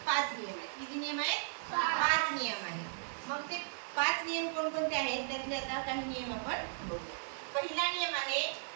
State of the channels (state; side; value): silent; left; digital silence